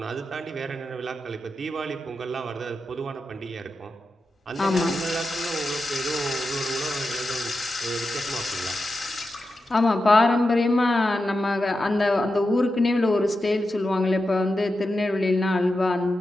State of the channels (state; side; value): normal; both; correlation 0.90